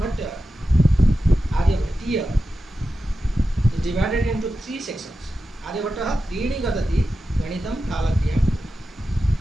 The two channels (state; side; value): normal; both; correlation 0.91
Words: is divided into three sections. Aryabhatta त्रीणि गदति गणितं कालक्रियां.